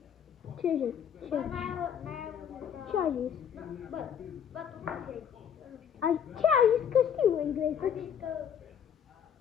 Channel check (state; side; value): quieter; right; 8.4 dB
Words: Ce zic? Ce? Ce? Ce ai zis? Bă, tu cum zici? Ce ai zis că știu engleză? A zis că...